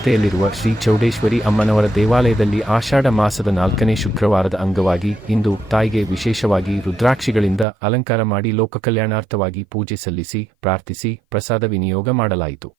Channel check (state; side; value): drops out; left; at 7.7 s